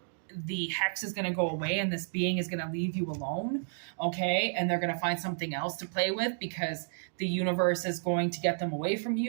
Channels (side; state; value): left; silent; digital silence